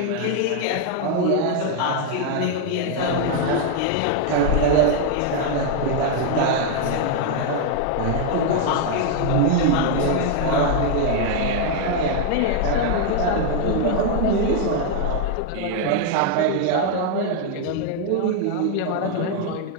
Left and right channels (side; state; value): both; different; correlation 0.00